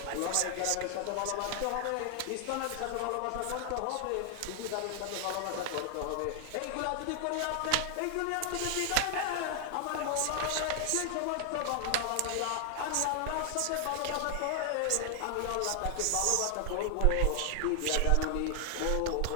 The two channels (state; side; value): different; both; correlation 0.00